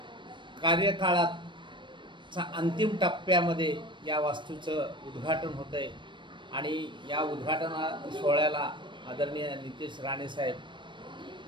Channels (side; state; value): left; late; 0.23 ms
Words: कार्यकाळाचा अंतिम टप्प्यामध्ये या वास्तूचं उद्घाटन होतं आहे आणि या उद्घाटना सोहळ्याला आदरणीय नितीश राणे साहेब